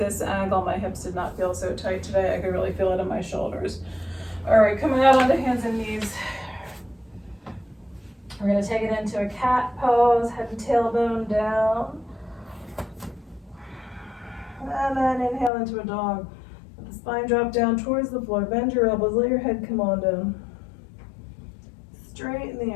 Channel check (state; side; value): drops out; right; at 15.5 s